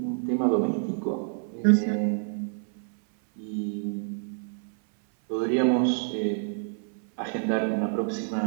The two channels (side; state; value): left; silent; 58 dB below the other